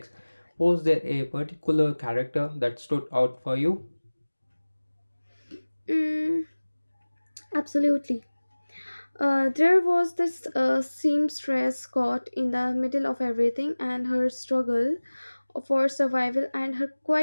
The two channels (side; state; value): both; inverted; correlation -1.00